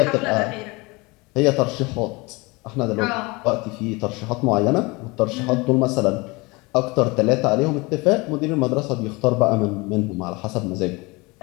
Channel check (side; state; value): right; quieter; 25.1 dB